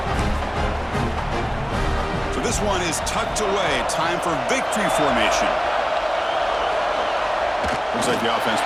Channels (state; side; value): identical; both; correlation 1.00